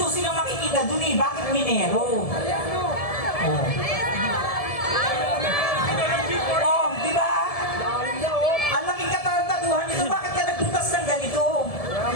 silang makikita dun Bakit minero? Oh. Oh, diba? Ang laking katarantaduhan nito. Bakit ka nagbutas ng ganito?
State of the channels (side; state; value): right; late; 1.7 ms